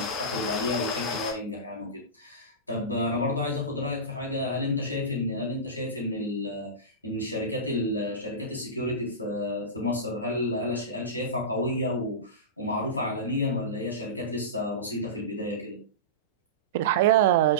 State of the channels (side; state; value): both; normal; correlation -0.20